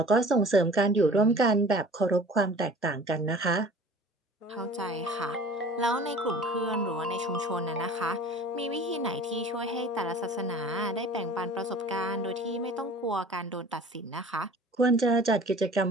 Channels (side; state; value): both; normal; correlation 0.45